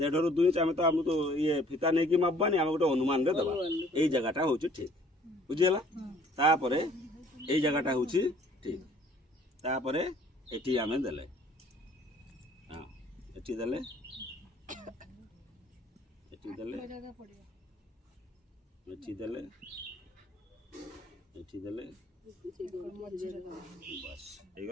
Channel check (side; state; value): both; normal; correlation 0.56